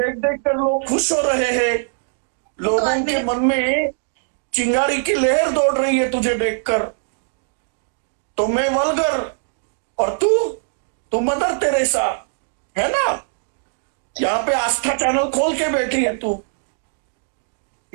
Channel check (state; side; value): silent; left; digital silence